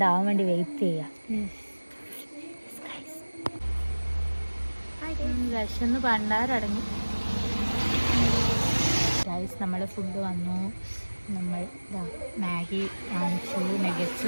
ആവാൻ വേണ്ടി വെയിറ്റ് ചെയ്യാം. വിശന്ന് പണ്ടാരടങ്ങി ഗൈസ്. നമ്മൾ ഫുഡ് വന്നു. നമ്മൾ മാഗി വാങ്ങിച്ചു, നഗറ്റ്സ്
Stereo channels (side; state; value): both; inverted; correlation -1.00